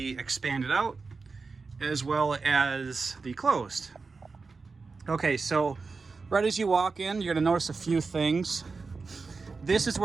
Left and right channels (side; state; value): left; quieter; 4.4 dB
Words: expanded out as well as the closed. Okay, so right as you walk in, you're gonna notice a few things. This is